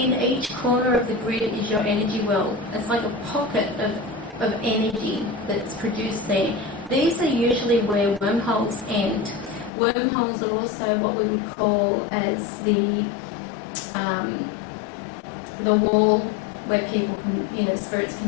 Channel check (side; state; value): right; drops out; at 9.7 s